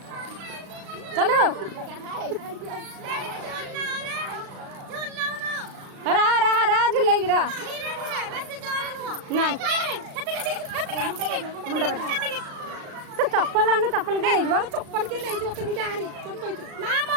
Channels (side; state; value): left; late; 36 ms